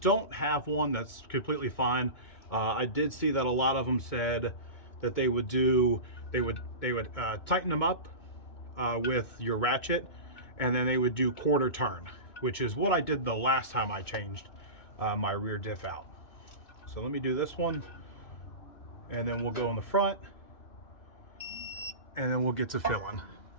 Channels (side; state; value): right; late; 2.2 ms